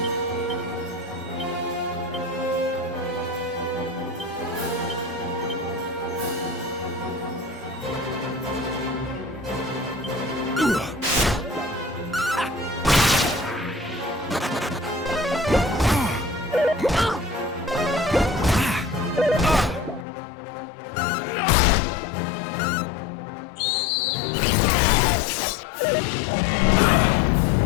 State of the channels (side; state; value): right; drops out; at 20.1 s